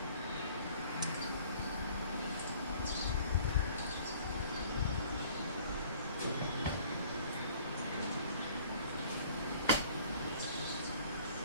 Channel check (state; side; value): inverted; both; correlation -0.53